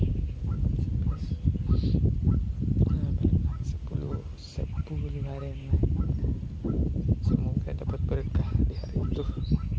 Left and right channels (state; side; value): identical; both; correlation 1.00